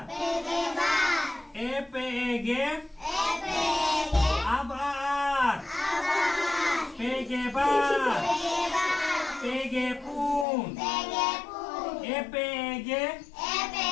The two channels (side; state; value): right; drops out; at 10.5 s